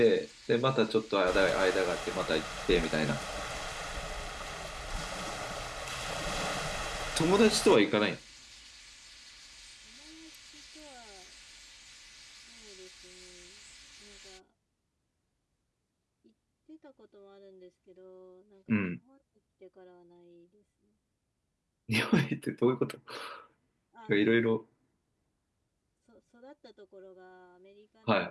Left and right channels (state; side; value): identical; both; correlation 1.00